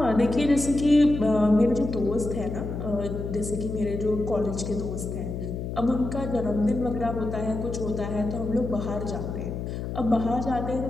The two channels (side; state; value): left; noise; hum, 5 dB below the sound